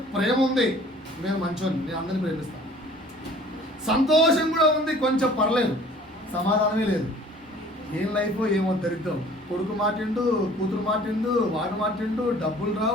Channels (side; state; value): both; normal; correlation 0.50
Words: ప్రేమ ఉంది, నేను మంచోని, నేను అందరినీ ప్రేమిస్తాను. సంతోషం కూడా ఉంది, కొంచెం పర్లేదు. సమాధానమే లేదు. ఏం లైఫ్ ఏమో దరిద్రం. కొడుకు మాటిండు, కూతురు మాటిండు, వాడు మాటిండు, డబ్బులు